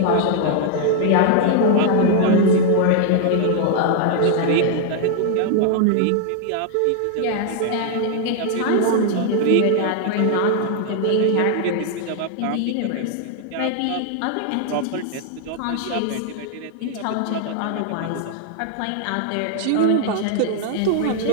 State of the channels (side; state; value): both; different; correlation 0.00